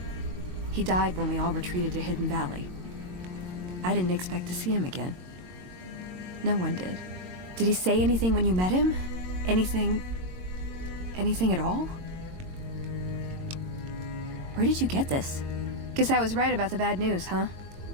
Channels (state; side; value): late; left; 22 ms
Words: He died when we all retreated to Hidden Valley. I didn't expect to see him again. No one did. Did he say anything when you met him? Anything at all? Where did you get this? Guess I was right about the bad news, huh?